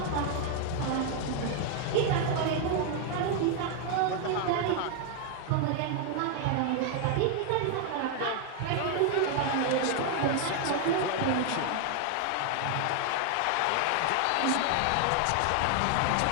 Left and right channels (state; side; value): different; both; correlation 0.00